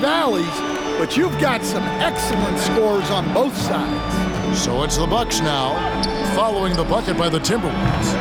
but you've got some excellent scores on both sides. So it's the Bucks now, following the bucket by the Timberwolves.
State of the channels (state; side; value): identical; both; correlation 1.00